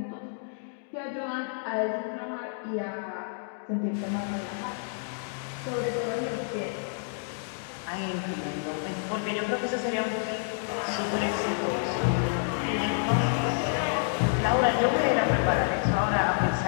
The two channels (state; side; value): silent; right; digital silence